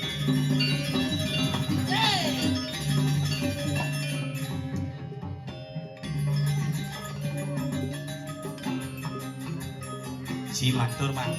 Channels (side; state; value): both; identical; correlation 1.00